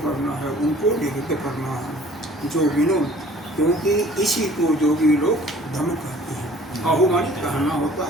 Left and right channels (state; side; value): normal; both; correlation 0.52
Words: करना है, उनको निरुद्ध करना है। जो विनोद, क्योंकि इसी को जोगी लोग धम कहते हैं। आहु मानी कहना होता